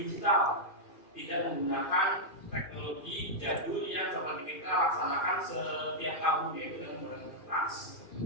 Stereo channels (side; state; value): right; late; 2.5 ms